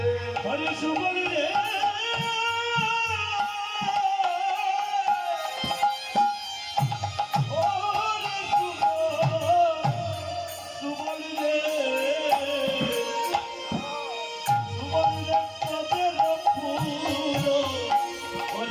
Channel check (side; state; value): both; identical; correlation 1.00